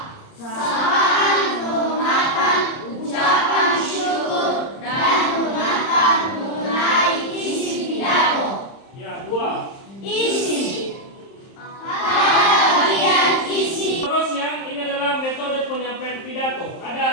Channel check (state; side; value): late; right; 31 ms